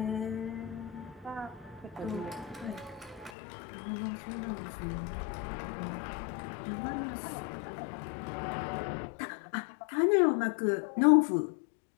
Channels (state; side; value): drops out; right; at 3.3 s